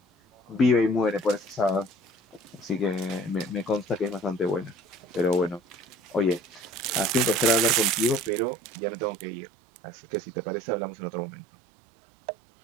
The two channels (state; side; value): drops out; left; at 8.3 s